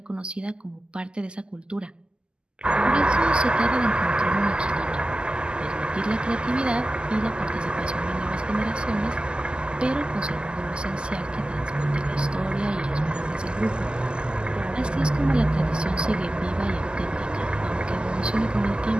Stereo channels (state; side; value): late; left; 0.049 ms